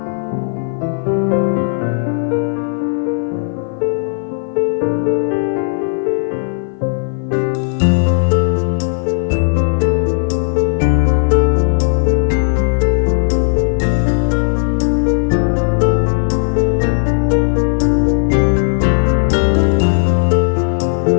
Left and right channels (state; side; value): silent; right; 57 dB below the other